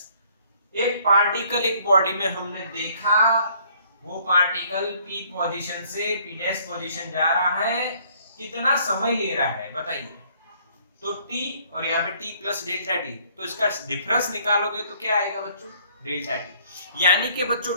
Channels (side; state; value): both; inverted; correlation -0.62